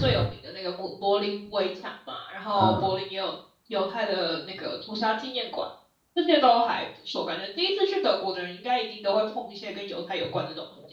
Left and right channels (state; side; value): identical; both; correlation 1.00